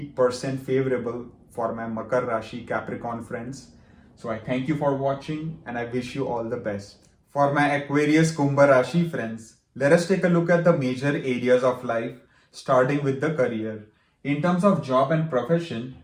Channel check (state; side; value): identical; both; correlation 1.00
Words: favorable for my Makar Rashi Capricorn friends. So I thank you for watching and I wish you all the best. For my Aquarius Kumbha Rashi friends, let us take a look at the major areas of life, starting with the career. In terms of job and profession,